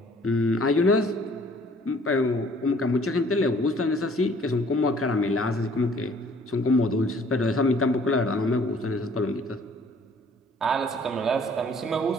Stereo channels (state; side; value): normal; both; correlation 0.57